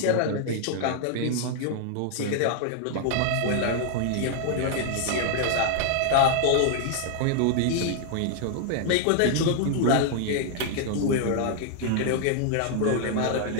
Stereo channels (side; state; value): both; different; correlation 0.00